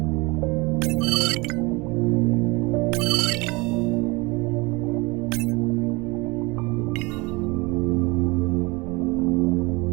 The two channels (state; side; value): quieter; left; 25.3 dB